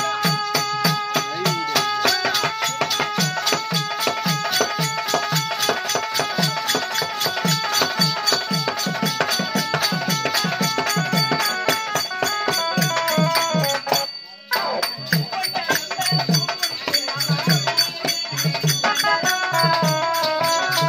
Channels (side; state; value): both; identical; correlation 1.00